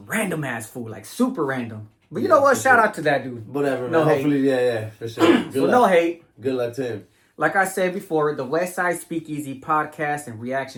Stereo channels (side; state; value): both; identical; correlation 1.00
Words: random ass food, like super random. But you know what? Shout out to that dude. Whatever, No man. hate. Hopefully, yeah, for sure. Good So luck. no hate. Good luck to him. Like I said before, the Westside Speakeasy podcast and